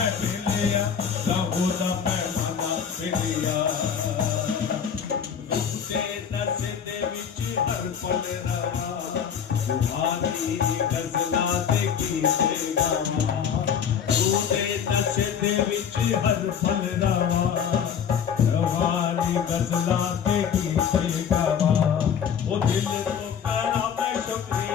गजला दे गीते गावा तूने नशे दे विच हर पल रवा रवानी गजला दे गीते गावा ओ दिल तो करा मैं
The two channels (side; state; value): right; quieter; 7.7 dB